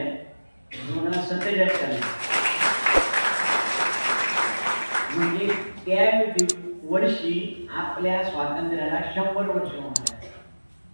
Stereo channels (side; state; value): both; inverted; correlation -1.00